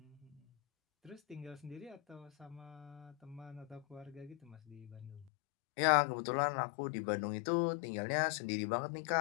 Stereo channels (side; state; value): right; drops out; at 5.3 s